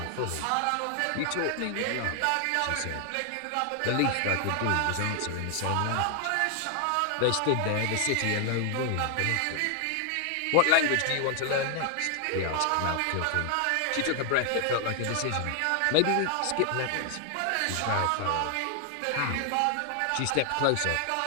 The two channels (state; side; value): different; both; correlation 0.00